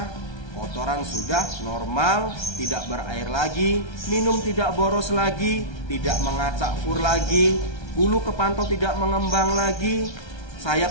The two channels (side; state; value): right; late; 1.3 ms